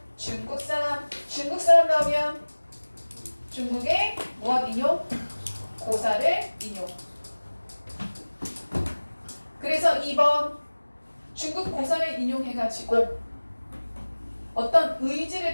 중국 사람. 중국 사람 나오면 중국의 무엇 인용? 고사를 인용. 그래서 2번 중국 고사를 인용해가지고 어떤 의지를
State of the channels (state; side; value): inverted; both; correlation -1.00